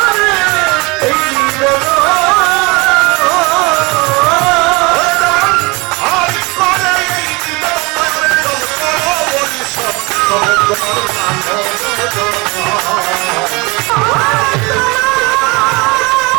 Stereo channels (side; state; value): left; quieter; 25.9 dB